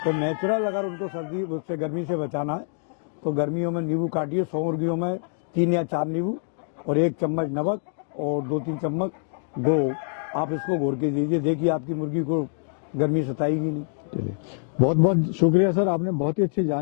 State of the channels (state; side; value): silent; right; digital silence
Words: तो नेचुरल अगर उनको सर्दी उससे गर्मी से बचाना है तो गर्मियों में नींबू काटिए। 100 मुर्गियों में 3 या 4 नींबू और 1 चम्मच नमक और 2-3 चम्मच गुड़ आप इसको घोर के दीजिए, देखिए आपकी मुर्गी को गर्मी सताएगी नहीं। चलिए, बहुत बहुत शुक्रिया सर, आपने बहुत ही अच्छी